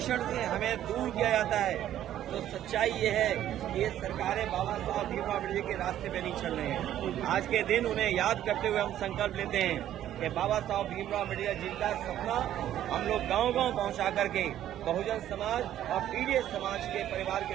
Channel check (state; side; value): quieter; left; 11.8 dB